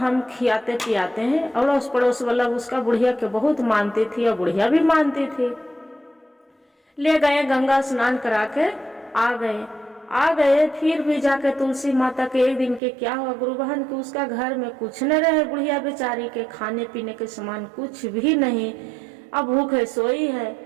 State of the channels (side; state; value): left; drops out; at 12.8 s